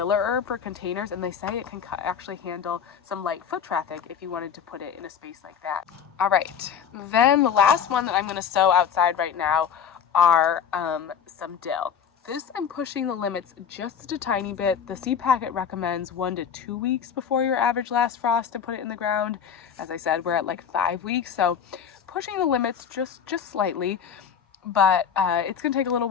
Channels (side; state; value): right; quieter; 7.7 dB